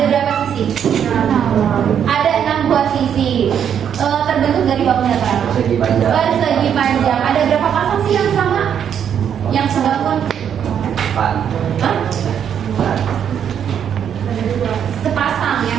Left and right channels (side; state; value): left; quieter; 8.6 dB